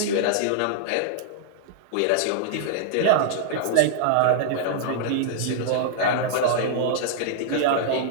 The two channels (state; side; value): different; both; correlation -0.01